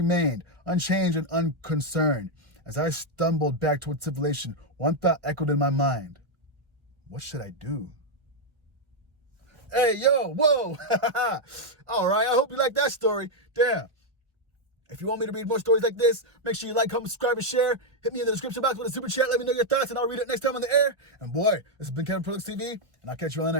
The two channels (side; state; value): left; late; 1.2 ms